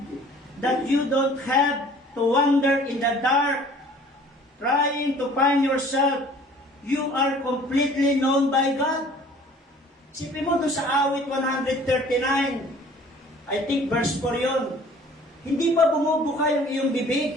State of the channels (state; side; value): normal; both; correlation 0.51